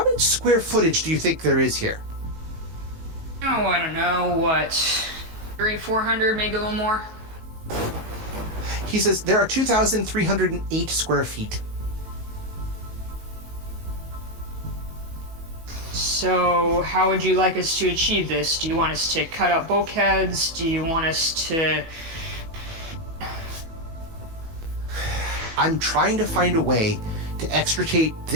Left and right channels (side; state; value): left; late; 18 ms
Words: much square footage do you think there is here? Oh, I don't know, what, 400, maybe a little more? He says, there are 2,308 square feet. So, how would you like us to achieve this? Do you want us to cut out bulkheads? Do you want us to... I'm trying to find a way to extricate